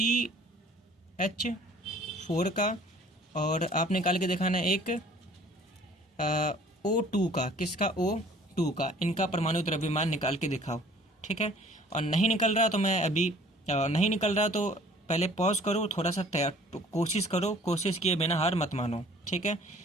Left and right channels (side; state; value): both; normal; correlation 0.52